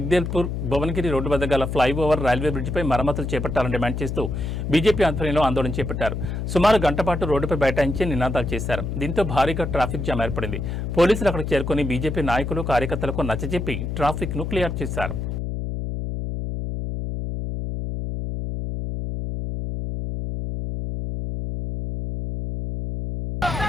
భువనగిరి రోడ్డు వద్ద గల ఫ్లైఓవర్ రైల్వే బ్రిడ్జిపై మరమ్మతులు చేపట్టాలని డిమాండ్ చేస్తూ బీజేపీ ఆధ్వర్యంలో ఆందోళన చేపట్టారు. సుమారు గంట పాటు రోడ్డుపై బైఠాయించి నినాదాలు చేశారు. దీంతో భారీగా ట్రాఫిక్ జామ్ ఏర్పడింది. పోలీసులు అక్కడికి చేరుకుని బీజేపీ నాయకులు కార్యకర్తలకు నచ్చజెప్పి ట్రాఫిక్ ను క్లియర్ చేశారు.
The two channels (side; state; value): left; noise; hum, 4 dB below the sound